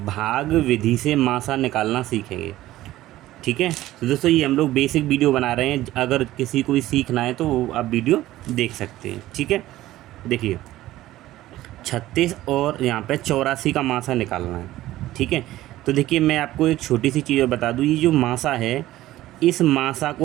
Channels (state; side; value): quieter; left; 15.4 dB